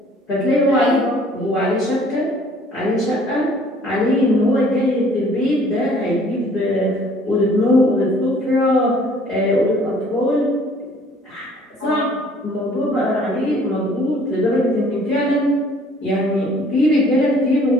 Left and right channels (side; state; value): both; normal; correlation 0.56